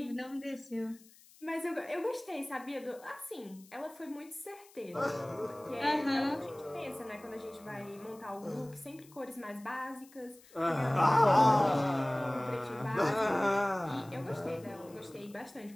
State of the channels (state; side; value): noise; left; hiss, 25 dB below the sound